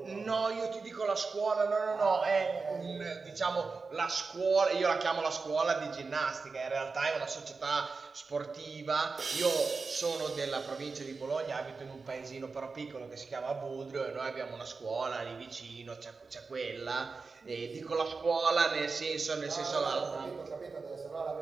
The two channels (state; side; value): quieter; left; 4.4 dB